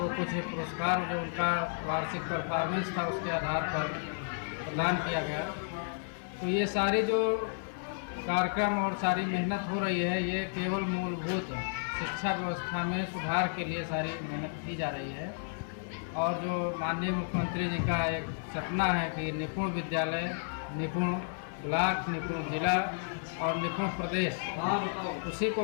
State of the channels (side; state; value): right; silent; digital silence